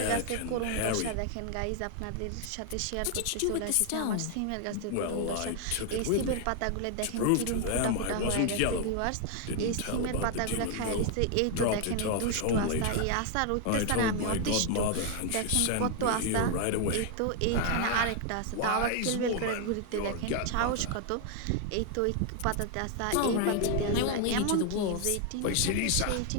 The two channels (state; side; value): different; both; correlation 0.00